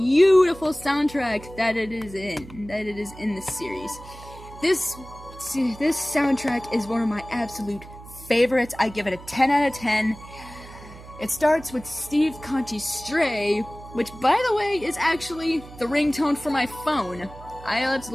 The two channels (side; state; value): right; noise; hum, 17 dB below the sound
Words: soundtrack that it is in the series. This soundtrack is one of my absolute favorites. I give it a 10 out of 10. It starts with Steve Conchi's Stray, which, by the way, is actually the ringtone for my phone. I